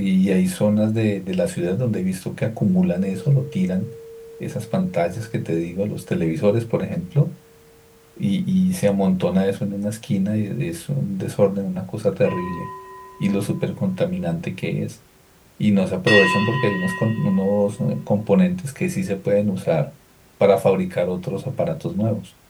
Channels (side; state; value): both; identical; correlation 1.00